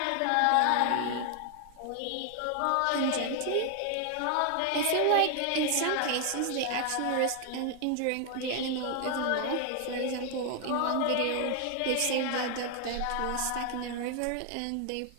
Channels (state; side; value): different; both; correlation 0.00